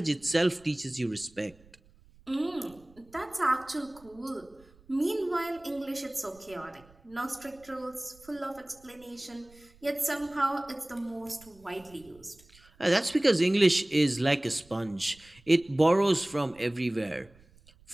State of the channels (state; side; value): noise; right; rumble, 27 dB below the sound